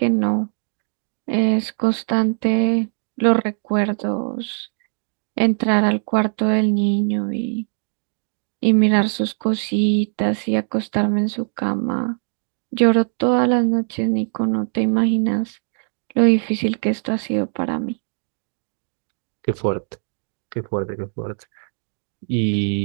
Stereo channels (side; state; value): left; silent; digital silence